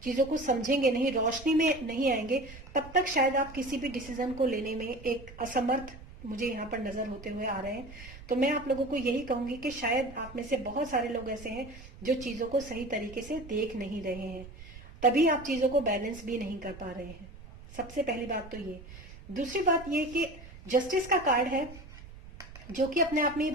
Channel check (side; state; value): right; noise; rumble, 16 dB below the sound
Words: चीजों को समझेंगे नहीं, रोशनी में नहीं आएंगे, तब तक शायद आप किसी भी डिसीजन को लेने में एक असमर्थ मुझे यहाँ पर नजर होते हुए आ रहे हैं। तो मैं आप लोगों को यही कहूंगी कि शायद आप में से बहुत सारे लोग ऐसे हैं जो चीजों को सही तरीके से देख नहीं रहे हैं, तभी आप चीजों को बैलेंस भी नहीं कर पा रहे हैं। सबसे पहली बात तो ये। दूसरी बात ये कि जस्टिस का कार्ड है जो कि अपने आप में ये